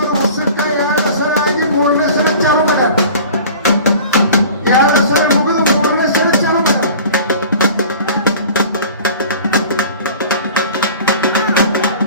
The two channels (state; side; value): inverted; both; correlation -0.42